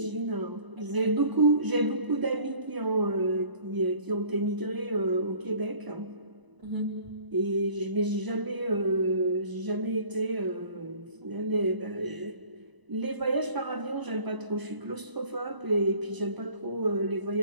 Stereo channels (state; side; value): late; left; 1.0 ms